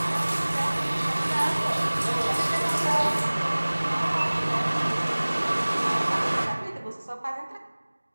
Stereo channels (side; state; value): both; inverted; correlation -1.00